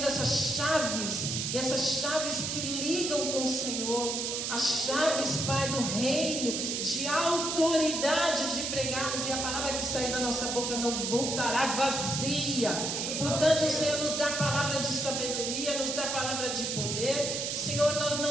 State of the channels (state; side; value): noise; right; hiss, 2 dB below the sound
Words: essas chaves que ligam com o Senhor, as chaves, Pai, do reino, de autoridade de pregarmos, e a palavra que sair da nossa boca não voltará vazia. Portanto, Senhor, nos dá a palavra de sabedoria, nos dá a palavra de poder. Senhor, nós